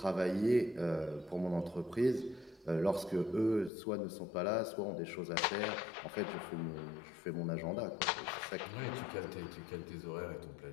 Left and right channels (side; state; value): right; drops out; at 3.7 s